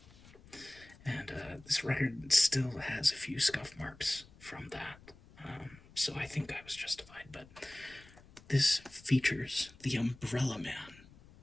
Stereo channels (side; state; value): left; noise; rumble, 23 dB below the sound